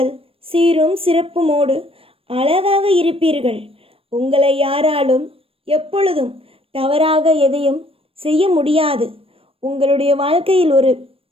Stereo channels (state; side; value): late; left; 0.27 ms